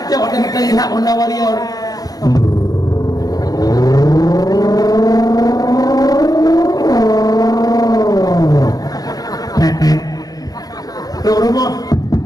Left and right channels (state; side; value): late; right; 0.18 ms